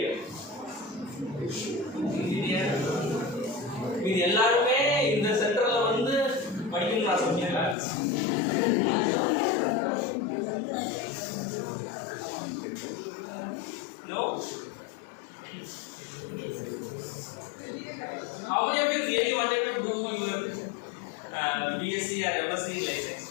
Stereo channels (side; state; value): right; drops out; at 7.8 s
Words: Engineer. மீதி எல்லாருமே இந்த சென்டர்ல வந்து படிக்கணும்னு ஆசைப்பட்டீங்களா? No? How many of you really wanted to do your BSc or MSc in life